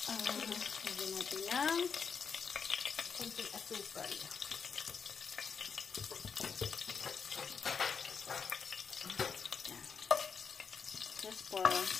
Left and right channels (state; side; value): quieter; right; 6.1 dB